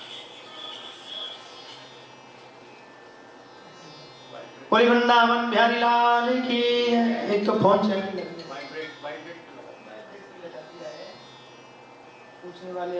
कोई वृंदावन बिहारी लाल की। एक तो फोन चल पूछने वाले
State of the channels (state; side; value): identical; both; correlation 1.00